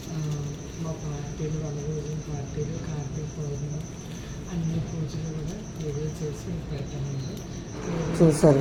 మా పార్టీలు, వనభోజన పార్టీలు, కార్తీక పౌర్ణమి అన్ని పూజలు కూడా వీడియో చేసి పెడతామండి. చూసారు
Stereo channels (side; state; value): both; identical; correlation 1.00